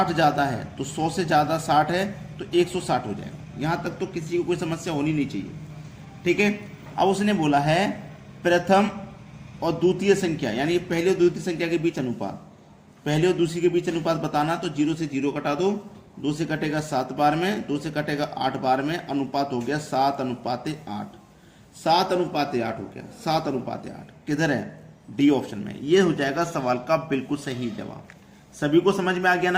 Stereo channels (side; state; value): both; identical; correlation 1.00